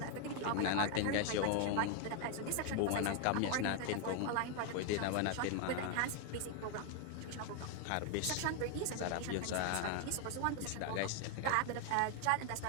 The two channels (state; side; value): different; both; correlation 0.01